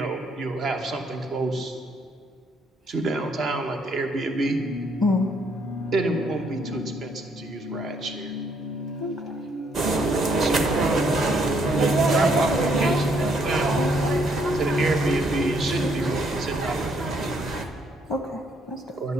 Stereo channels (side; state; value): both; normal; correlation 0.70